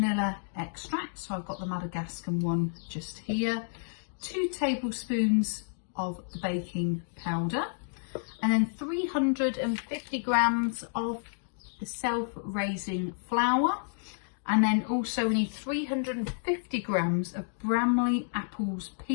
extract, so I've got the Madagascar one just here. 2 tablespoons of the baking powder, and then 350 grams of the self-raising flour. And then also we need 350 grams of Bramley apples,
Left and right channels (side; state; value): right; silent; digital silence